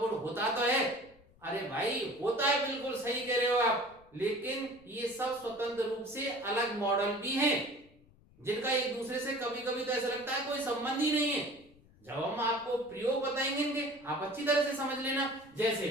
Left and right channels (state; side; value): noise; left; rumble, 28 dB below the sound